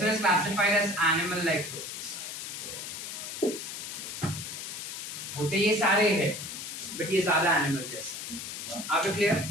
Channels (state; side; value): noise; left; hiss, 7 dB below the sound